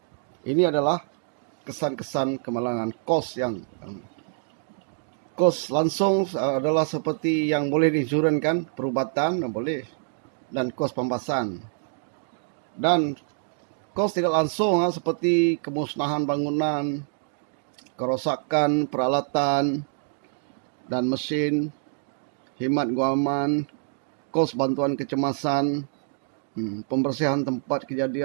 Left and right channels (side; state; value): left; silent; digital silence